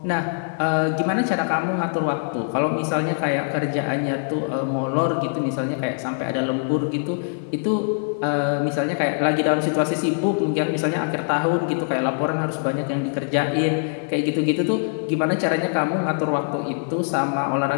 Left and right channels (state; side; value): silent; right; 63 dB below the other